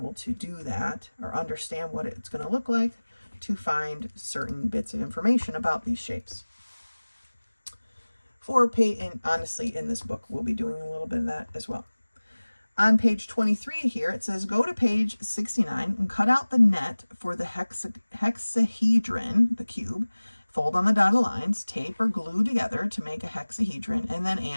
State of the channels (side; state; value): both; inverted; correlation -1.00